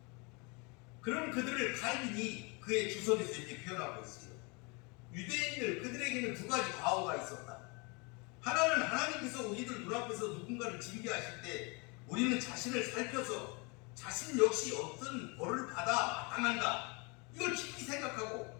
그런 그들을 칼빈이 그의 주석에서 이렇게 표현하고 있어요. 유대인들 그들에게는 두 가지 과오가 있었다. 하나는 하나님께서 우리들 눈앞에서 누군가를 징계하실 때 우리는 자신을 살펴서 자신 역시 어떤 벌을 받아 마땅한가 이걸 깊이 생각하고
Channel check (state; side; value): quieter; right; 30.3 dB